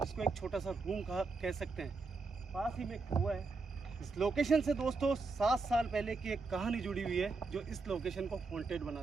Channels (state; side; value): quieter; left; 3.9 dB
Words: इसको एक छोटा सा रूम कह सकते हैं। पास ही में एक कुआं है। इस लोकेशन से दोस्तों 7 साल पहले की एक कहानी जुड़ी हुई है जो इस लोकेशन को हॉन्टेड